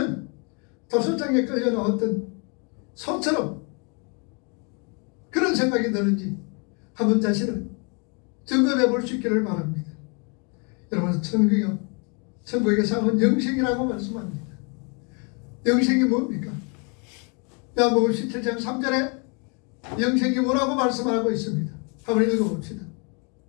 도살장에 끌려 나왔던 소처럼 그런 생각이 드는지 한번 자신을 점검해 볼 수 있기를 바랍니다. 여러분, 천국의 상은 영생이라고 말씀합니다. 영생이 뭡니까? 요한복음 17장 3절에 영생이 뭐라고 말씀하고 있습니다. 한번 읽어봅시다.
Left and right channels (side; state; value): right; quieter; 34.8 dB